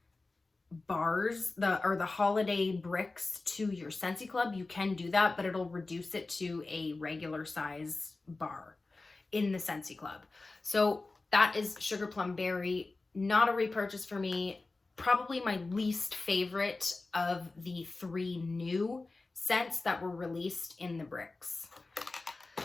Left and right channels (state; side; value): quieter; right; 3.4 dB